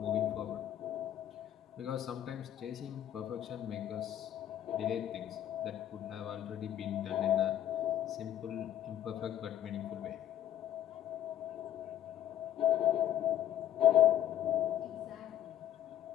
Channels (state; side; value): quieter; right; 11.3 dB